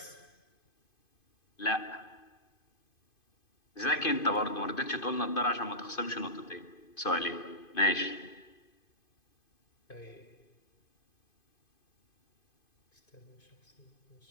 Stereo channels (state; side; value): late; right; 2.5 ms